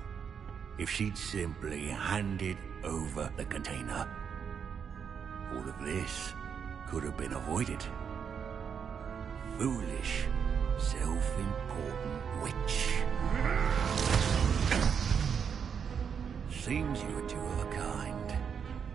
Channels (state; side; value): quieter; left; 7.1 dB